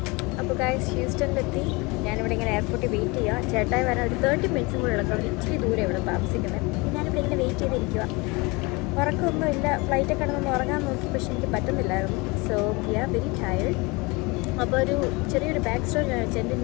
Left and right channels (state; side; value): quieter; right; 26.1 dB